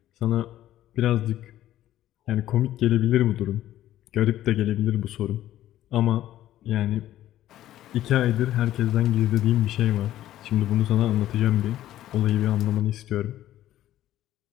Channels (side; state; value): right; quieter; 13.2 dB